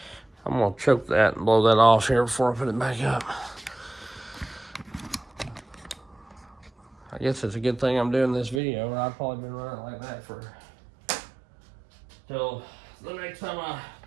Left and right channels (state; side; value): drops out; left; at 8.6 s